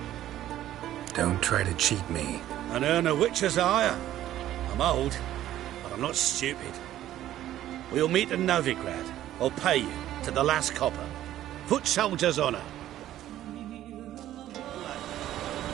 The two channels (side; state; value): left; quieter; 13.0 dB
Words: Don't try to cheat me. An earn a witcher's hire. I'm old, but I'm not stupid. We'll meet in Novigrad. I'll pay you to the last copper. Foot soldier's honour.